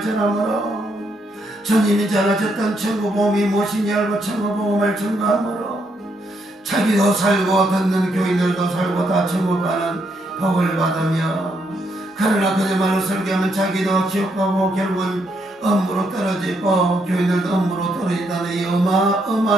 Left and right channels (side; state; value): both; normal; correlation 0.76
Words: 전함으로 주님이 전하셨던 천국복음이 무엇인지 알고 천국복음을 전가함으로 자기도 살고 듣는 교인들도 살고 다 천국 가는 복을 받으며 그러나 그들만을 설교하면 자기도 지옥 가고 결국은 엄무로 떨어지고 교인들도 엄무로 떨어진다는 이